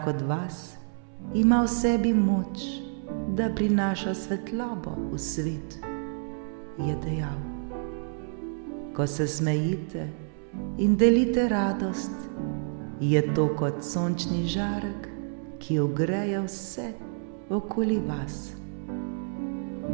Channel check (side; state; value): left; silent; 59 dB below the other